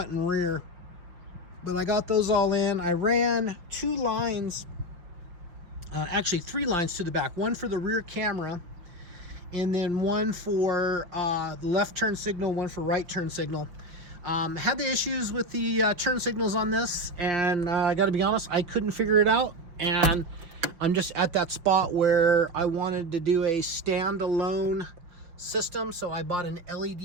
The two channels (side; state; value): left; late; 5.7 ms